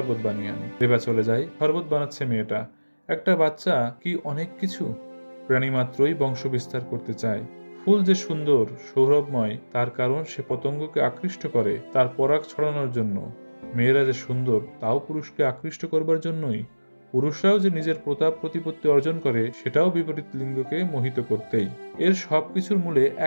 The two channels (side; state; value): both; inverted; correlation -1.00